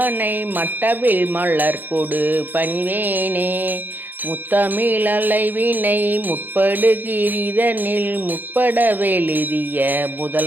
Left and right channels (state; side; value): late; left; 0.088 ms